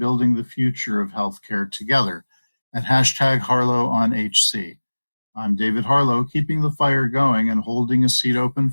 the future of healthcare together at #HarlowOnHC. I'm David Harlow, keeping the fire going and holding a seat open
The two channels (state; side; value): inverted; both; correlation -1.00